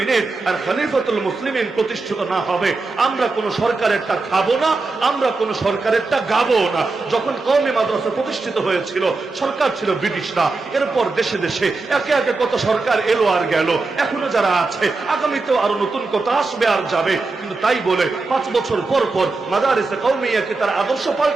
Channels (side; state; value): left; quieter; 3.7 dB